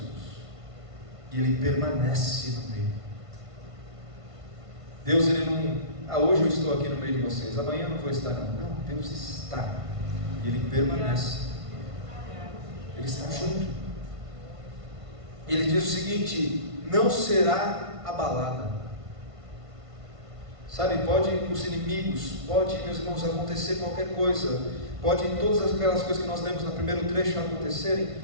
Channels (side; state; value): left; late; 1.5 ms